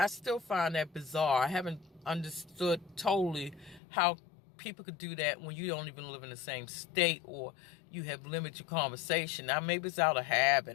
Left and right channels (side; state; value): right; drops out; at 3.8 s